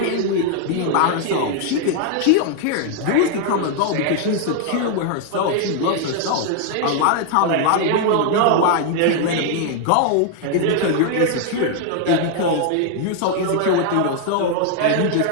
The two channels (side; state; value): both; different; correlation 0.00